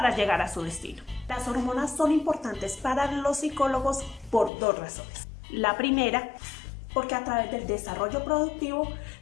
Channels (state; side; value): drops out; right; at 4.5 s